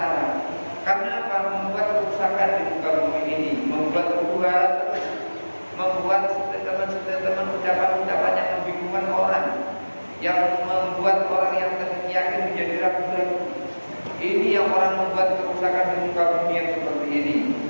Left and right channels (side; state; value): both; inverted; correlation -1.00